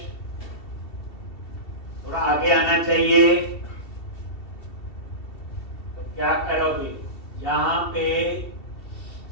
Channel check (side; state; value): right; late; 2.7 ms